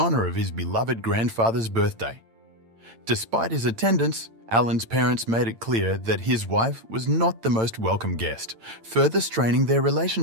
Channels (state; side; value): late; left; 8.9 ms